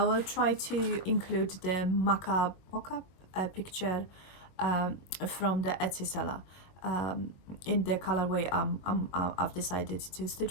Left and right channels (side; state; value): right; late; 22 ms